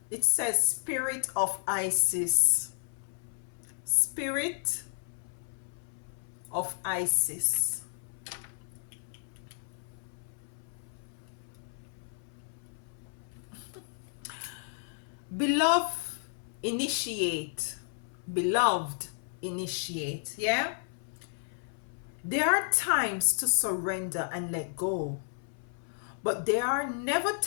It says Spirit of Isis. Spirit of Isis. Beloved, initiate. Beloved, initiate. Yeah? There are times to surrender and let go, but there are never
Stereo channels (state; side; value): silent; right; 56 dB below the other